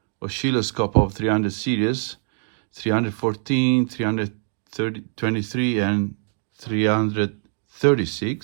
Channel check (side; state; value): left; silent; digital silence